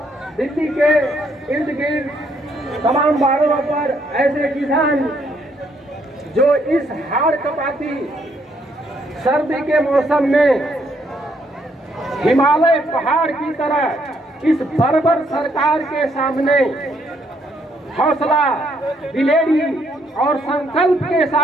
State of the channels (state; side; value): normal; both; correlation 0.71